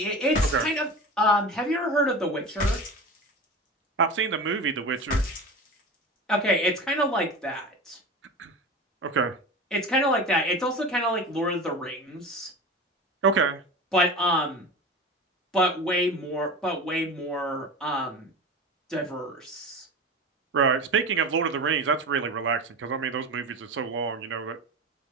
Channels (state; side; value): normal; both; correlation 0.31